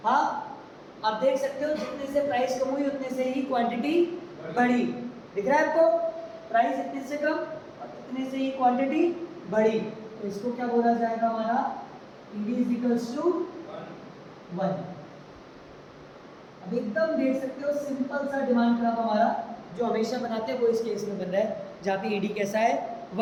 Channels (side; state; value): both; identical; correlation 1.00